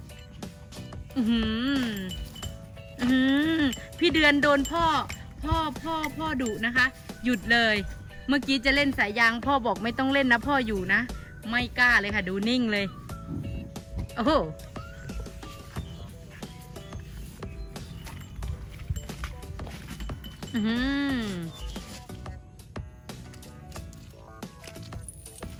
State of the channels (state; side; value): identical; both; correlation 1.00